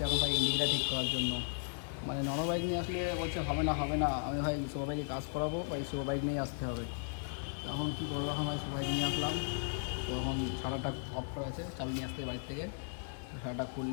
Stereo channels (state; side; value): silent; right; digital silence